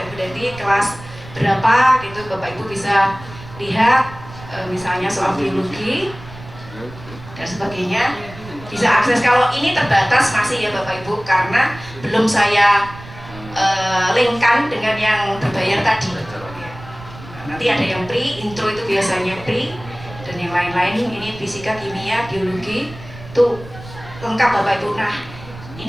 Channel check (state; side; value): noise; right; rumble, 16 dB below the sound